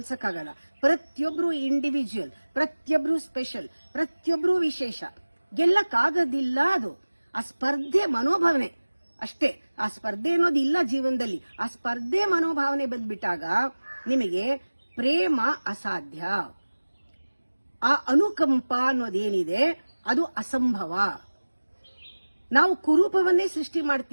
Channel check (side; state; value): both; inverted; correlation -1.00